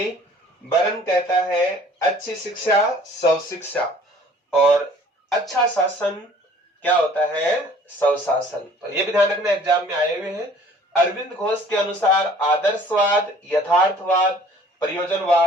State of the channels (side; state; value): both; normal; correlation 0.53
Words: बरन कहता है अच्छी शिक्षा सब शिक्षा और अच्छा शासन क्या होता है सब शासन। तो ये भी ध्यान रखना, एग्जाम में आए हुए हैं। अरविंद घोष के अनुसार आदर्शवाद, यथार्थवाद,